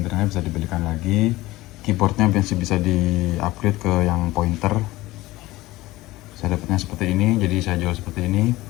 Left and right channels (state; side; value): quieter; right; 18.5 dB